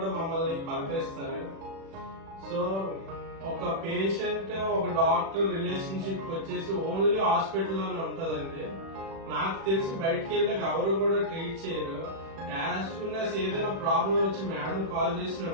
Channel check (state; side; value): late; left; 36 ms